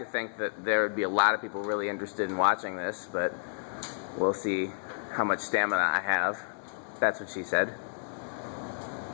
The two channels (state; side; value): silent; right; digital silence